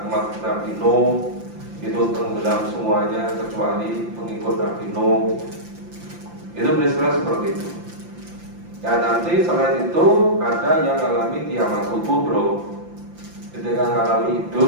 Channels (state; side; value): late; left; 5.8 ms